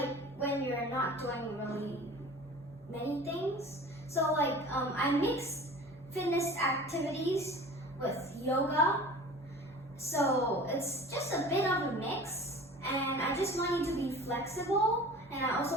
when you're not doing really many things. So I mix fitness activities with yoga. So it's just a bit of a mix, and I just want you to be flexible, and I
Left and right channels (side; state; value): both; normal; correlation 0.40